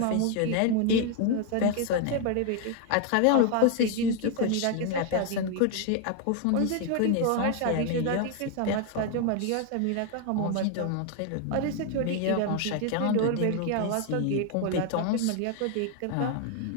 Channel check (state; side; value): different; both; correlation 0.00